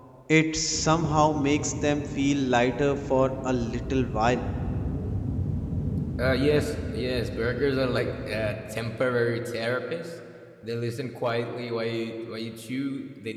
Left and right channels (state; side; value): identical; both; correlation 1.00